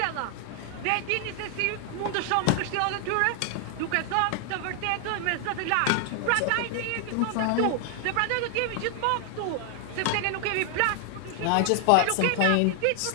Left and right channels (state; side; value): different; both; correlation 0.00